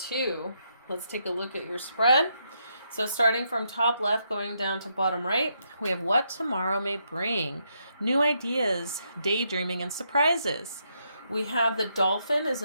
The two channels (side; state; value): both; inverted; correlation -0.78